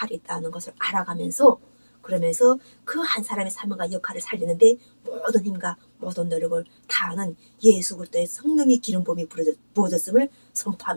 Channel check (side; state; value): both; inverted; correlation -1.00